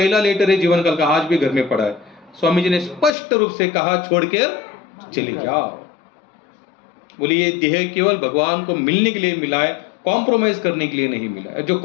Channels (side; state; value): right; drops out; at 3.1 s